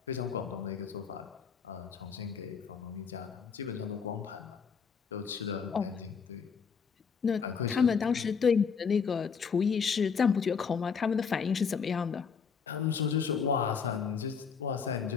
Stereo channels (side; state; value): right; quieter; 6.2 dB